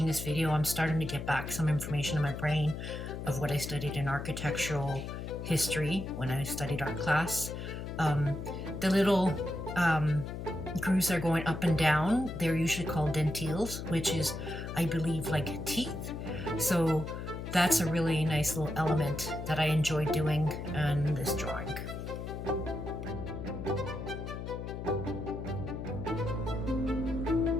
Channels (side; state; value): left; noise; hum, 7 dB below the sound